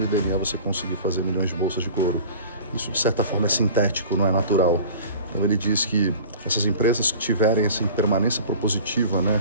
DNA você conseguir fazer milhões de bolsas de couro. Isso, de certa forma, é sintético, não é natural. Então, ele diz que essas empresas que tiverem essa permanência propositiva, né,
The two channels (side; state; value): both; inverted; correlation -0.42